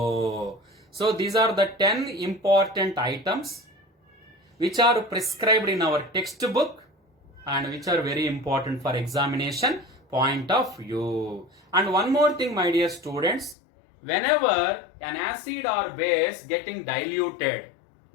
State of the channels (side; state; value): right; drops out; at 13.6 s